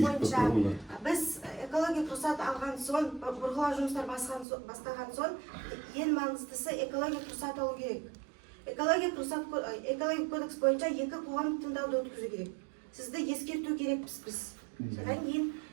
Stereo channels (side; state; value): left; drops out; at 4.5 s